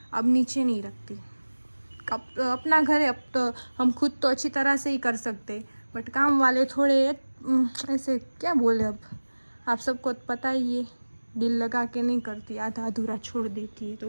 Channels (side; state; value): both; inverted; correlation -1.00